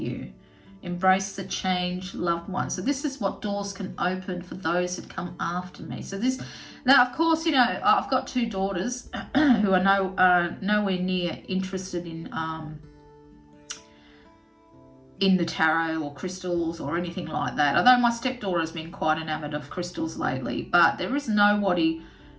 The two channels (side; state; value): both; identical; correlation 1.00